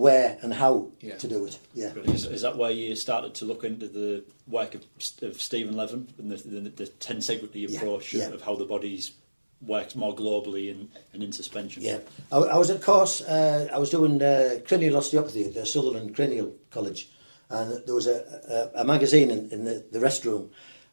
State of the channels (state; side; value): inverted; both; correlation -1.00